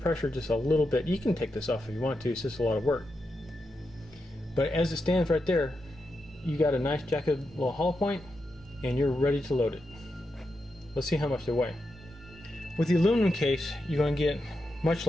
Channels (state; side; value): normal; both; correlation 0.86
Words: just a little bit. You can take this off if you want to, it's just a lot of work. But as it stands right there, you got a nice jacketed little hollow point, and you're ready to load it. Let's see how much they weigh. With the aluminum case, you're going to get much